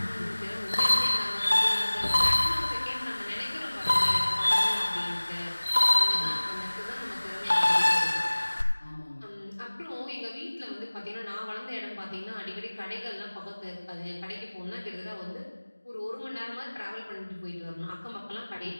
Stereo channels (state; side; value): inverted; both; correlation -1.00